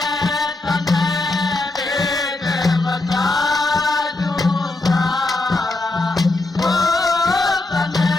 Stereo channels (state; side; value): quieter; right; 3.0 dB